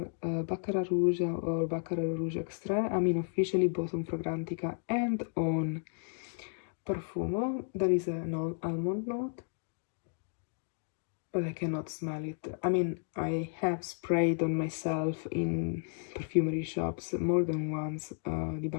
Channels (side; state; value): right; silent; digital silence